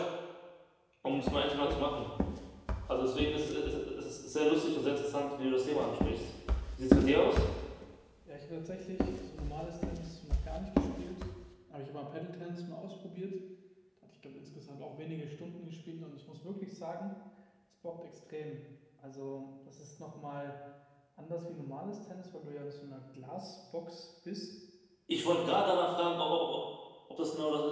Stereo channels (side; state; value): both; identical; correlation 1.00